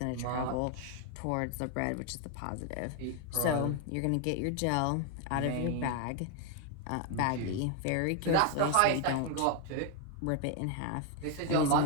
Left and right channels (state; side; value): different; both; correlation 0.01